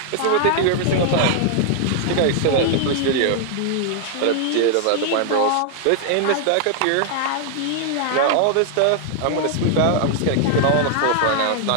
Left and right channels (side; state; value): both; different; correlation 0.00